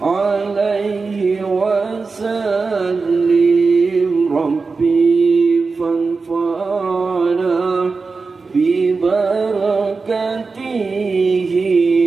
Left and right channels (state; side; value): quieter; left; 4.3 dB